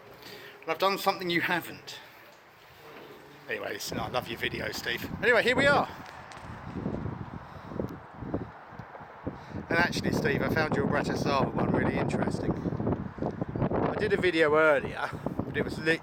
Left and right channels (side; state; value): both; identical; correlation 1.00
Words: I've done something you haven't. Anyway, listen, I love your video, Steve. Anyway, here we are. And actually, Steve, I found your Bratislava one really interesting. I did a video earlier, but it was